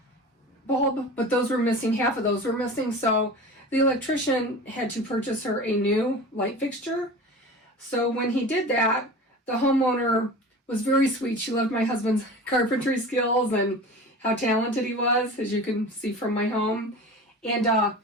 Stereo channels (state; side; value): normal; both; correlation 0.35